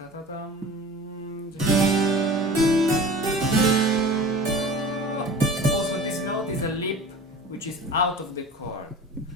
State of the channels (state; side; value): normal; both; correlation 0.38